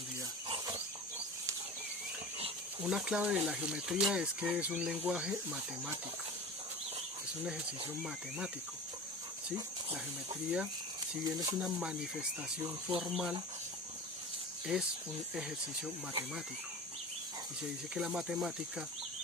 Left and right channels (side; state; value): both; normal; correlation 0.33